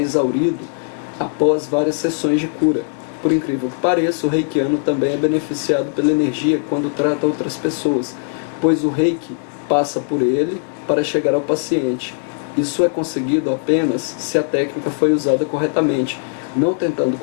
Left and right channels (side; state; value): right; silent; 66 dB below the other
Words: após várias sessões de cura. Por incrível que pareça, o reikiano também é beneficiado pela energia quando trata outras pessoas, pois o reiki passa por ele para chegar ao paciente. Isso é conseguido apenas se a técnica foi usada corretamente, não tentando